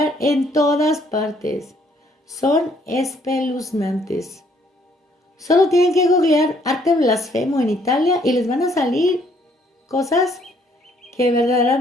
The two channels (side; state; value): both; normal; correlation 0.66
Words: en todas partes. Son espeluznantes. Solo tienen que googlear arte blasfemo en Italia y les van a salir cosas que